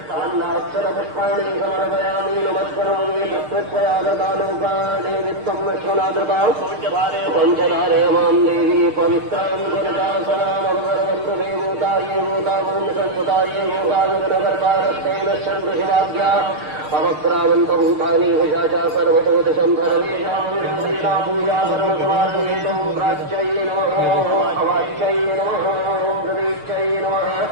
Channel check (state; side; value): late; left; 6.6 ms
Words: अन्नाक्षरपुष्पाणि समर्पयामि नमस्करोमि तत्त्वयागतालोकानि वित्तं विश्वनाथता पञ्चधारे मां देवी पवित्रां गुरुदासनामवरवन्तु देवताये भूतावंशसुताये भूतागमनगर्भारस्तेन शन्तु शिवाभ्या अवक्रावन्तभूतानि हुषाचा सर्वतो दिशं सर्वेषां विरोधिता पूजा सर्वसमार्पयितुं प्राच्यै नमः अवाच्यै नमः प्रदीच्यै नमः